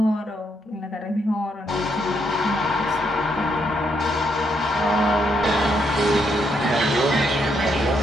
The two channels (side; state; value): both; normal; correlation 0.76